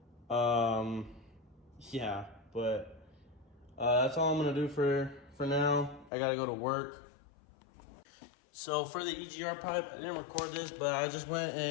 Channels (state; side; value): drops out; right; at 6.1 s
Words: yeah, but that's all I'm gonna do for now. I gotta go to work. So for the EGR pipe, I didn't record this, but I just went